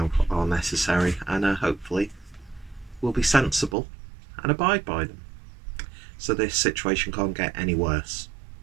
are necessary and hopefully will be sensible and abide by them. So this situation can't get any worse.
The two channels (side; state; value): left; drops out; at 3.8 s